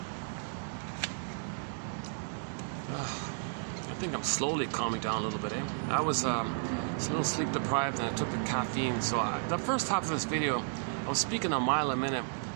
I think I'm slowly calming down a little bit, eh? I was a little sleep deprived and I took the caffeine, so the first half of this video I was speaking a mile a minute,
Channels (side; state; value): left; silent; digital silence